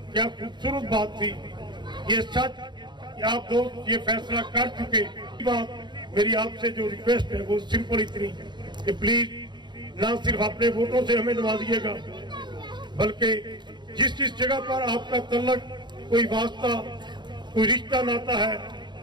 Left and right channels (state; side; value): late; left; 0.22 ms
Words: क्या खूबसूरत बात थी। ये सच कि आप दोस्त ये फैसला कर चुके। बात मेरी आपसे जो रिक्वेस्ट है वो सिंपल इतनी कि प्लीज ना सिर्फ अपने वोटों से हमें नवाजिएगा, बल्कि जिस जिस जगह पर आपका तल्लक, कोई वास्ता, कोई रिश्ता नाता है,